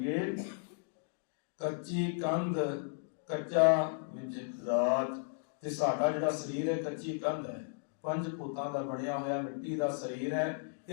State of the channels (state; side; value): silent; right; digital silence